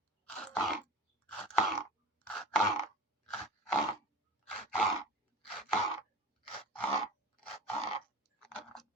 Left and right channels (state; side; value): normal; both; correlation 0.34